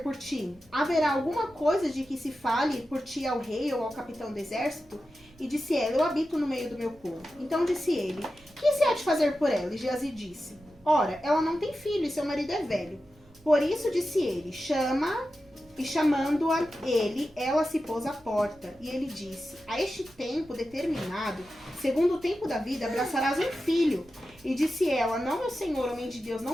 por ti? Haverá alguma coisa de que se fale por ti ao rei ou ao capitão do exército? E disse ela, eu habito no meio do meu povo. Então disse ele, que se há de fazer por ela? E Geazi disse, ora, ela não tem filho e seu marido é velho. Por isso disse ele, chama, e chamando-a ele, ela se pôs à porta. E ele disse, a este tempo determinado, segundo o tempo da vida, abraçarás um filho. E disse ela, não, meu senhor, homem de Deus,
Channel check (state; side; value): noise; right; rumble, 27 dB below the sound